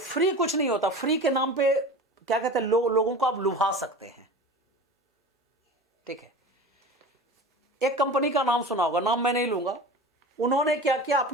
कुछ नहीं होता। फ्री के नाम पे क्या कहते हैं, लोगों को आप लुभा सकते हैं। ठीक है, एक कंपनी का नाम सुना होगा, नाम मैं नहीं लूंगा। उन्होंने क्या किया,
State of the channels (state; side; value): normal; both; correlation 0.34